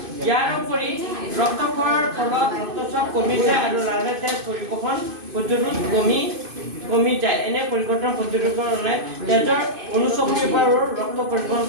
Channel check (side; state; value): left; late; 2.5 ms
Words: ইয়াৰ উপৰি ৰক্তকণৰ ফলত ৰক্তচাপ কমি যায় আৰু লাহে তেজ পৰিবহণ প্ৰতিৰোধ কমি যায় এনে পৰিৱৰ্তন প্ৰতিৰোধ কৰে তেজৰ অনুচক্ৰিয়াৰ ৰক্ত পৰিবহণ